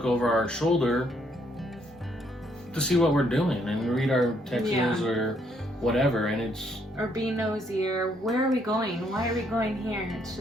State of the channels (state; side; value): normal; both; correlation 0.70